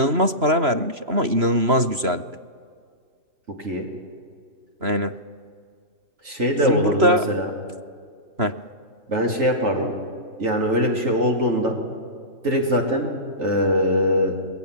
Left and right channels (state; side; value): late; left; 3.0 ms